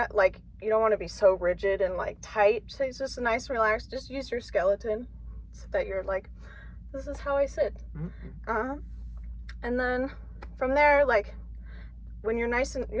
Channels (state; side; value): identical; both; correlation 1.00